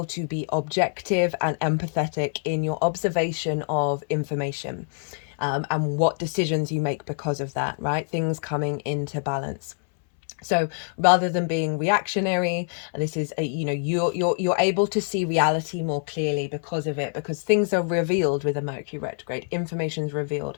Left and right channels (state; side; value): silent; right; 61 dB below the other